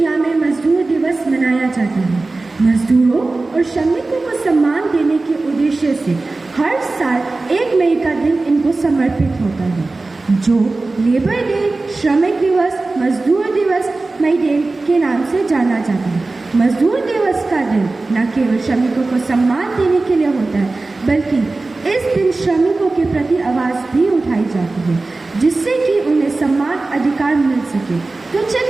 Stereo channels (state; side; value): quieter; left; 3.4 dB